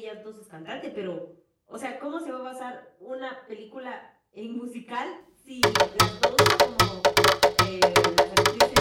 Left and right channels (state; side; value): identical; both; correlation 1.00